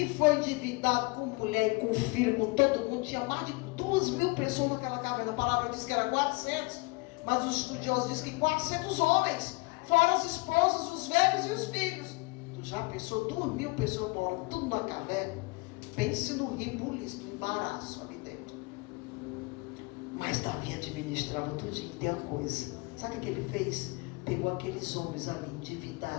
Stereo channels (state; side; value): quieter; right; 26.8 dB